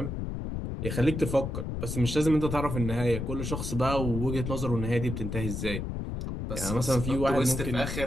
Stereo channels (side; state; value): left; noise; rumble, 4 dB below the sound